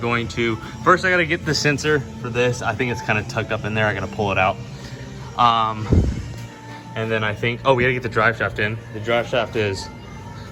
to, first I gotta get the sensor for this. I think it's kind of tucked up in there. I gotta pull it out. And then I think, oh, we gotta get the drive shaft in. The drive shaft is,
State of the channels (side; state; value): both; identical; correlation 1.00